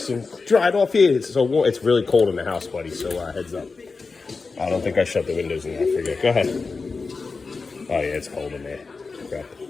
and dried off here. It's so warm. It's really cold in the house, buddy, so heads up. I don't think I shut the windows in there. I forget. Go ahead. Oh, yeah, it's cold in there. Okay.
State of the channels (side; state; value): right; quieter; 4.3 dB